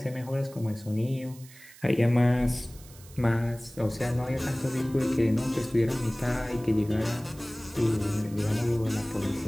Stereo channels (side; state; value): right; noise; hiss, 21 dB below the sound